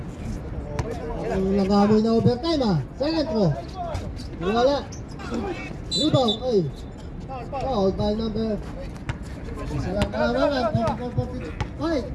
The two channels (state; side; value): identical; both; correlation 1.00